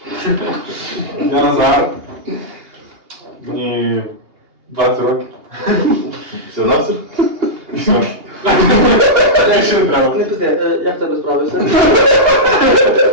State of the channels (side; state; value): left; late; 2.8 ms